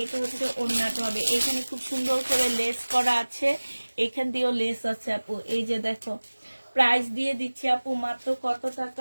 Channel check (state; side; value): inverted; both; correlation -1.00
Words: হচ্ছে ওড়নাটা হবে। এখানে খুব সুন্দর করে লেস করা আছে, এখান দিয়েও লেস আছে আপু। এই যে দেখো প্রাইস দিয়ে দিচ্ছি আপু মাত্র কত